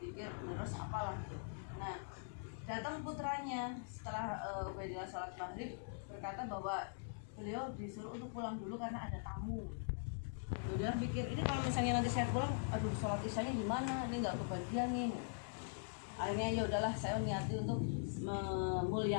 zikir terus apalah. Nah datang putranya setelah Ubaidillah sholat maghrib berkata bahwa beliau disuruh untuk pulang dulu karena ada tamu. Dia pikir ini kalau misalnya nanti saya pulang, aduh sholat isyanya gimana, ini nggak kebagian nih. Akhirnya ya udahlah, saya niati untuk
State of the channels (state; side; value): silent; right; digital silence